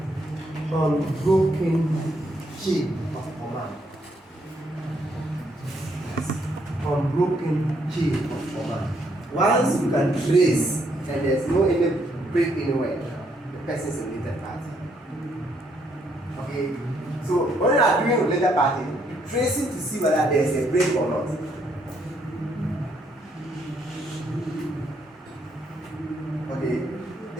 unbroken chain of command. Unbroken chain of command. Once you can trace and there's no any break anywhere, the person is a related party. Okay? So when you are doing related party, tracing to see whether there is a break or not. Okay?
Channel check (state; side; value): normal; both; correlation 0.72